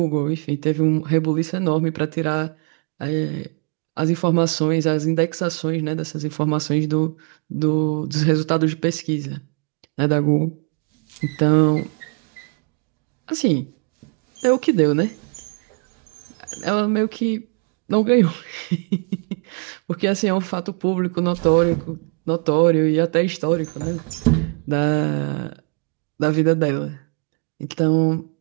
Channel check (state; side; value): quieter; left; 35.2 dB